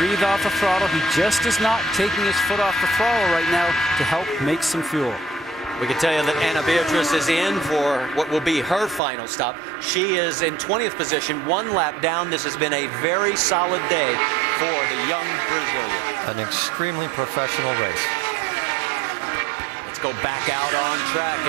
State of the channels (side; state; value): left; drops out; at 9.0 s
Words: off the throttle. He just is not taking his foot off the throttle right now to help make some fuel. We can tell you that Ana Beatriz is in for what will be her final stop. She is in 20th position, 1 lap down. This has been a very solid day for the young Brazilian. An extremely professional race. Let's go back out on track,